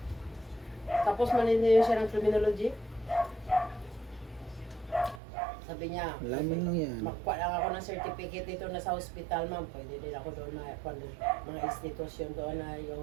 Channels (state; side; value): drops out; left; at 5.2 s